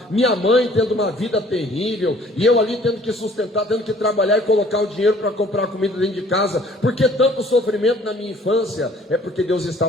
minha mãe tendo uma vida terrível, e eu ali tendo que sustentar, tendo que trabalhar e colocar o dinheiro para comprar comida dentro de casa? Por que tanto sofrimento na minha infância? É porque Deus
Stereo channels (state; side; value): normal; both; correlation 0.55